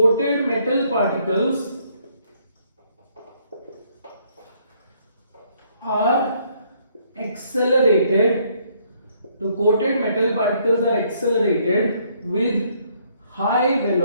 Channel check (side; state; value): both; inverted; correlation -0.67